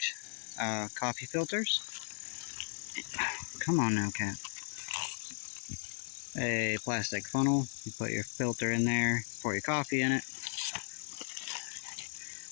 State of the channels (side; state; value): right; silent; 54 dB below the other